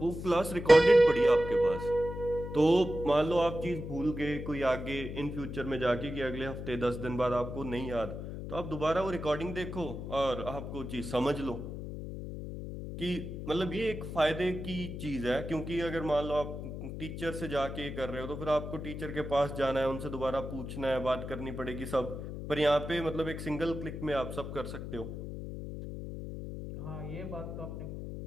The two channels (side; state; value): left; noise; hum, 7 dB below the sound